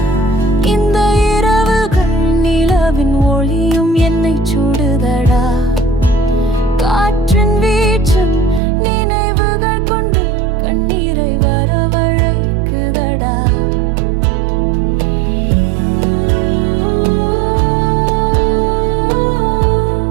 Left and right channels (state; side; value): drops out; left; at 8.6 s